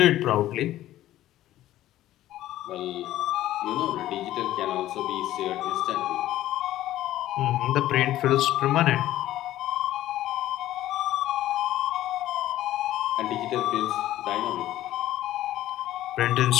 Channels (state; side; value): quieter; right; 14.1 dB